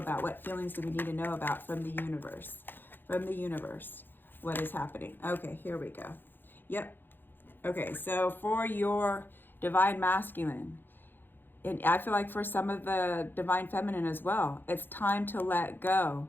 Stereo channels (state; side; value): late; right; 0.097 ms